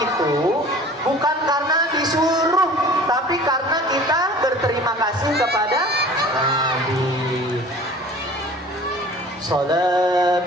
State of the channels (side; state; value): both; normal; correlation 0.44